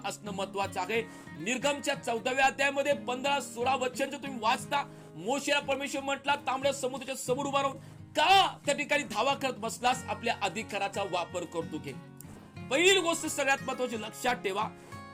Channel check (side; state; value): both; identical; correlation 1.00